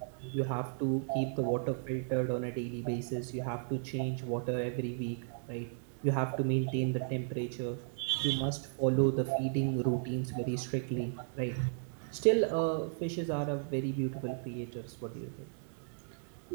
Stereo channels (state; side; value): silent; left; digital silence